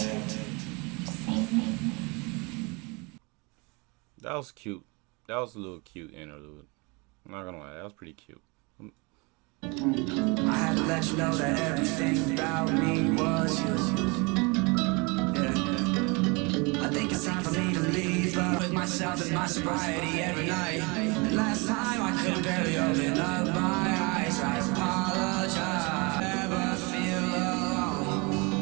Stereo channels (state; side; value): quieter; left; 28.7 dB